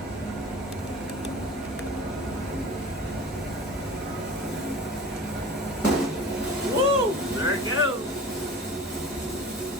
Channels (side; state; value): both; normal; correlation 0.39